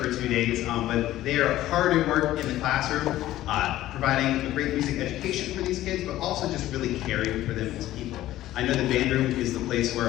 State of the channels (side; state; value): right; quieter; 14.6 dB